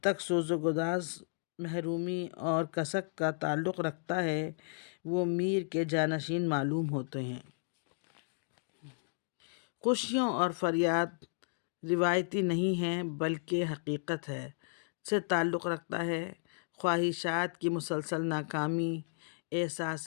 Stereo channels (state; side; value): silent; right; digital silence